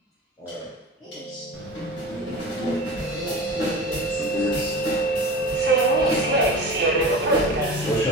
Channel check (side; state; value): both; normal; correlation 0.33